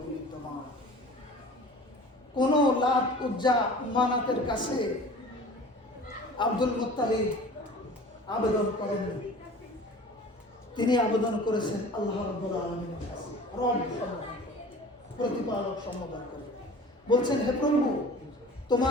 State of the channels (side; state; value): both; normal; correlation 0.42